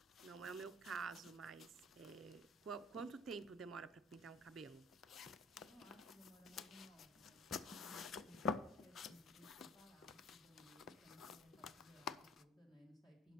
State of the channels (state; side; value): normal; both; correlation 0.48